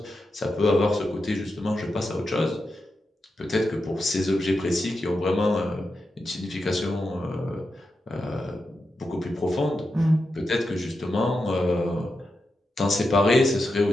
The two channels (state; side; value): normal; both; correlation 0.88